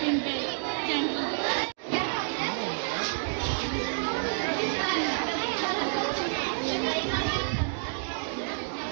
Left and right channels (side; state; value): left; silent; digital silence